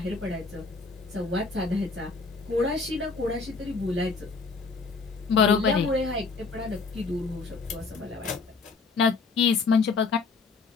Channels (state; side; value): quieter; right; 4.3 dB